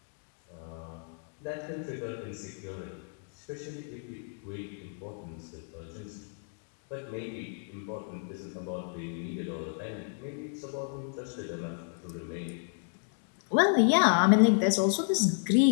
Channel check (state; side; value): silent; right; 57 dB below the other